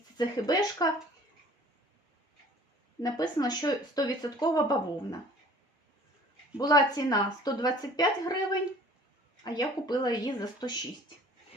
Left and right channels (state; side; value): normal; both; correlation 0.50